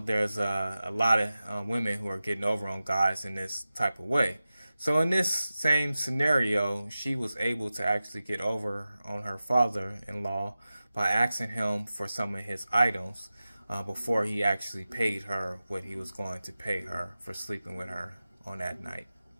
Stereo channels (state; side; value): inverted; both; correlation -0.95